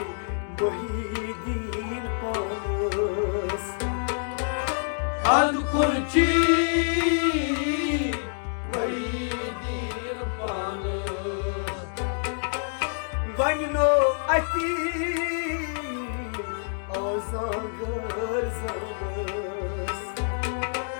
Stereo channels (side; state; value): right; silent; digital silence